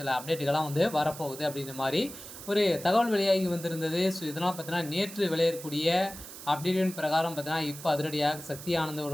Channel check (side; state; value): right; noise; hiss, 13 dB below the sound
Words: அப்டேட்டுகள்லாம் வந்து வரப்போகுது அப்படின்ற மாதிரி ஒரு தகவல் வெளியாகி வந்திருந்தது. இதனால் பார்த்தீங்கன்னா, நேற்று வெளியேறக்கூடிய அப்டேட்டின் பிரகாரம் பார்த்தீங்கன்னா, இப்போ அதிரடியாக சக்தி ஆனந்த்